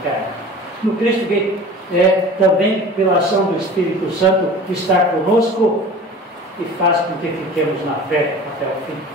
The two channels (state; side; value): normal; both; correlation 0.40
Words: no Cristo que também, pela ação do Espírito Santo, está conosco e faz com que fiquemos na fé até o fim,